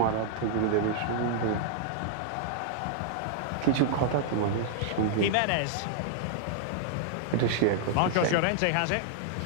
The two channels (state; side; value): different; both; correlation -0.01